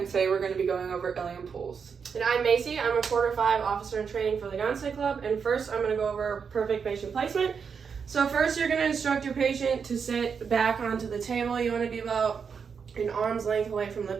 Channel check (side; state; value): left; quieter; 6.2 dB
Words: today we're going to be going over Ilium pulls. And I'm Macy. I'm a quarter 5 officer in training for the Gonstead Club. And first, I'm going to go over perfect patient placement. So first, you're going to instruct your patient to sit back onto the table. You want to be about an arm's length away from the